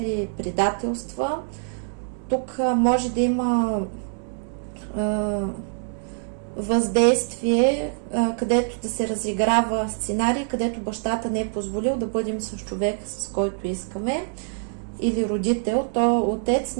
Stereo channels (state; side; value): silent; left; digital silence